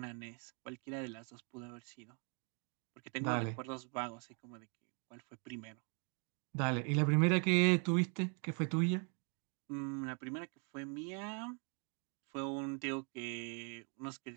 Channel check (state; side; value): quieter; left; 38.1 dB